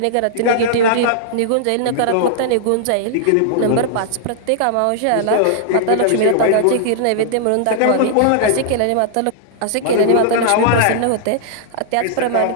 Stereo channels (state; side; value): different; both; correlation -0.01